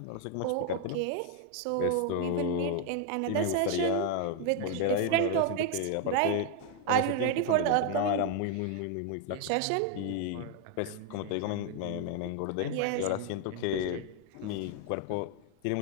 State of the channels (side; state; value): both; different; correlation 0.01